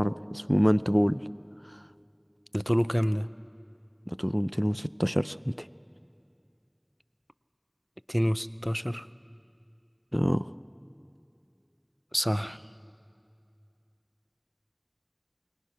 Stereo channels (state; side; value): identical; both; correlation 1.00